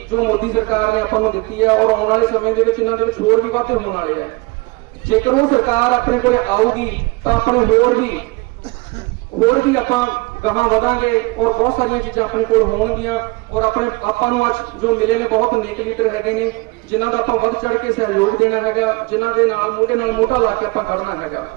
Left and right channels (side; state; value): left; quieter; 25.7 dB